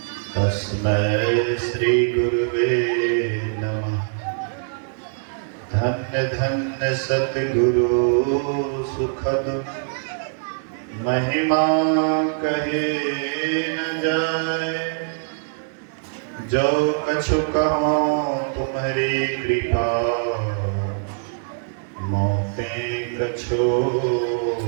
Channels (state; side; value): silent; left; digital silence